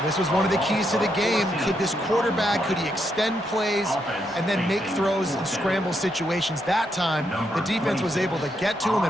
This was one of the keys to the game. Could this quarterback, could he extend plays and then make throws in scramble situations? That time, the defense was able to get to him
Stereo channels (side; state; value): both; normal; correlation 0.79